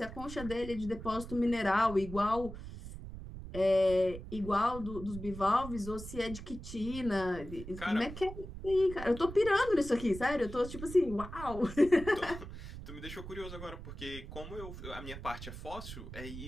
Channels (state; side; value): noise; right; rumble, 11 dB below the sound